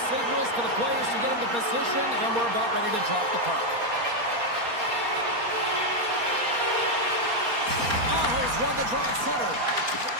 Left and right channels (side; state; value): left; late; 4.2 ms